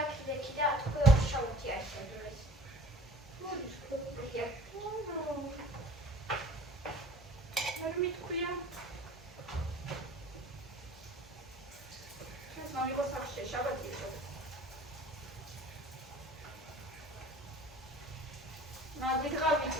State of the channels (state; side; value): normal; both; correlation 0.48